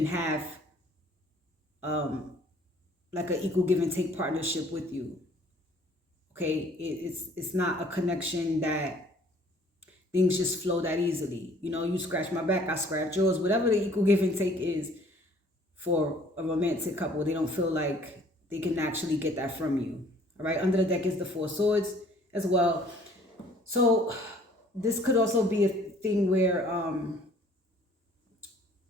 have like an equal give and take partnership with you. Okay, it's not a connection that things just flow that easily. You know, you scratch my back, I scratch yours. Whatever the equal give and take is for a romantic couple, they don't feel like they can actually get that from you. All right, under the deck is the Four Swords as well. So this could also be a thing where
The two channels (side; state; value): both; normal; correlation 0.56